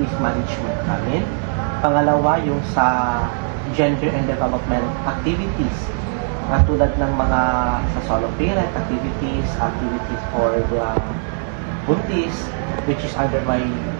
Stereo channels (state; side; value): silent; left; 60 dB below the other